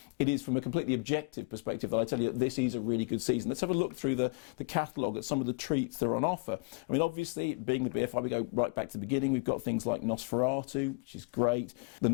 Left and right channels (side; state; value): right; quieter; 31.5 dB